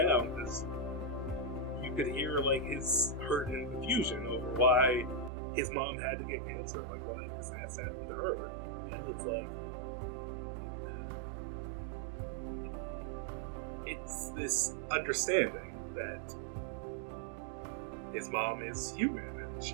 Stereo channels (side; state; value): left; drops out; at 5.3 s